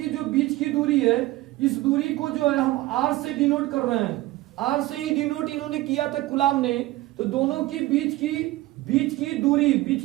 जो बीच की दूरी है, इस दूरी को जो है हम R से डिनोट कर रहे हैं। R से ही डिनोट इन्होंने किया था कुलाम ने। तो दोनों की बीच की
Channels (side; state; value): left; quieter; 18.0 dB